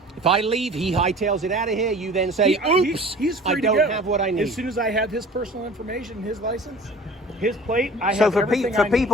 If I leave, he hightails it out of here. You then say, "Oops, he's free I to don't go. have what I need." As soon as I have his personal information, his license, his plate, I So have for everything I need.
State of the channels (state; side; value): normal; both; correlation 0.43